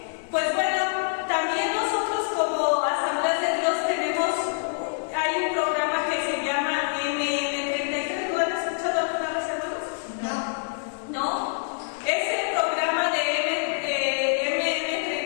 Pues bueno, también nosotros como Asambleas de Dios tenemos, hay un programa que se llama MM33, ¿lo han escuchado alguna vez, hermanos? ¿No? Ese programa de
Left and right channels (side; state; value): right; silent; digital silence